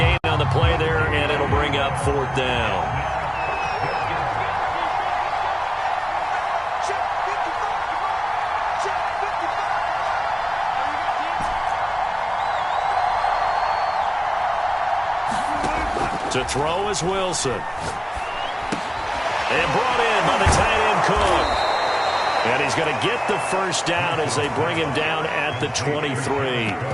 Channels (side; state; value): both; identical; correlation 1.00